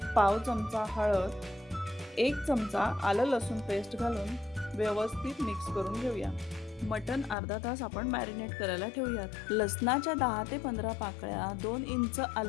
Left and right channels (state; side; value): drops out; right; at 7.4 s